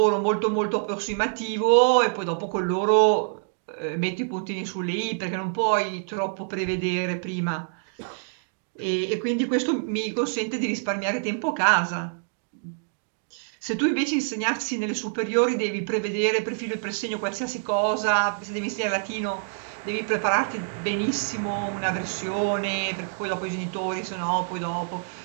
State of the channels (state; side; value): silent; left; digital silence